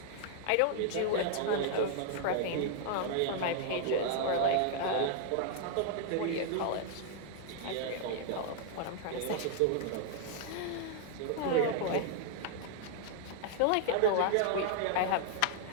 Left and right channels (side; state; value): both; different; correlation 0.00